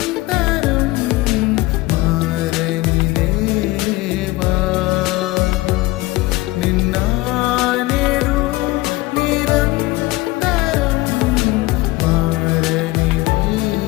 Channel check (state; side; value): quieter; right; 20.0 dB